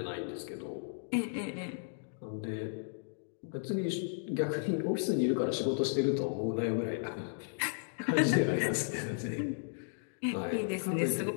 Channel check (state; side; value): silent; right; digital silence